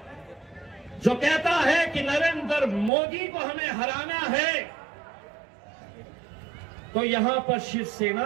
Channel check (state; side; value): drops out; left; at 2.9 s